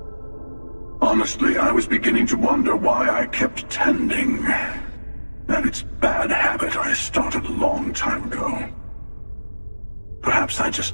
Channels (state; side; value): inverted; both; correlation -1.00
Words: Honestly, I was beginning to wonder why I kept tending. And it's bad habit I started a long time ago. Perhaps I